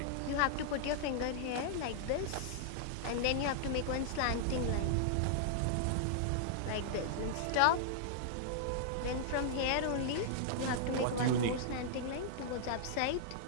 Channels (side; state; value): both; different; correlation -0.01